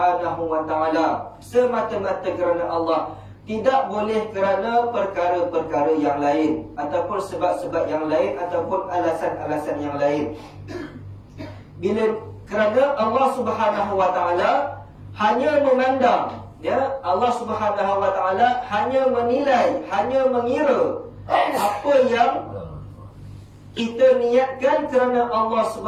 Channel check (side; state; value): both; identical; correlation 1.00